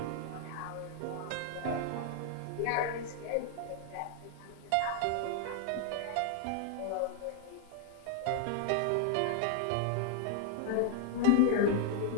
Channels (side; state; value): both; different; correlation 0.00